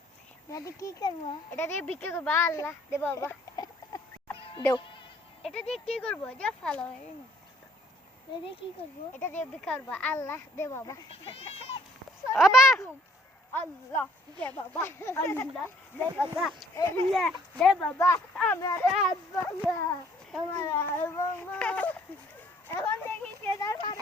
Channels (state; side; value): normal; both; correlation 0.61